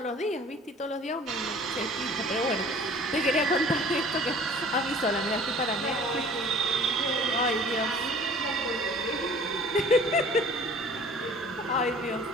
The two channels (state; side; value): normal; both; correlation 0.48